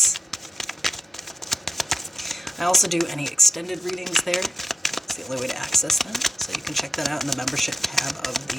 I also do any extended readings there. It's the only way to access them, so you can check that out in the membership tab of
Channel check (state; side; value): normal; both; correlation 0.92